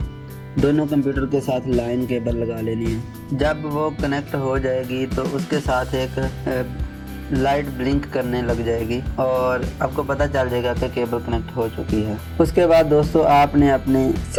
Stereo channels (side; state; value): both; identical; correlation 1.00